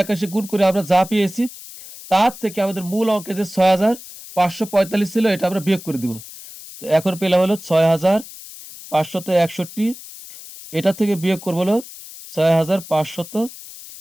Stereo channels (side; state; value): left; noise; hiss, 16 dB below the sound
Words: 81 গুণ করে আমরা যা পেয়েছি তার থেকে আমাদের মূল অঙ্কে যে 6545 ছিল এটা আমরা বিয়োগ করে দিব। তো এখন পেলাম হলো 6561, এটা থেকে বিয়োগ করবো হলো